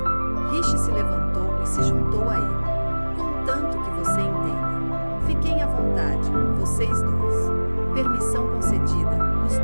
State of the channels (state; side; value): inverted; both; correlation -1.00